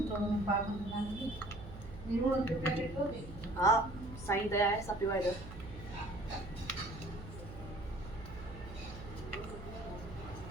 थोड़ो पाक दान दी नीरो के पैकेट हो गई। हां साईं दया है सब पीवा इधर।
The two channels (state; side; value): noise; right; hum, 13 dB below the sound